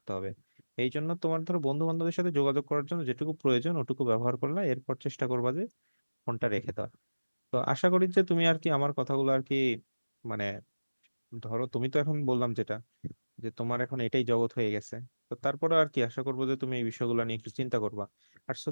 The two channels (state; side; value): inverted; both; correlation -1.00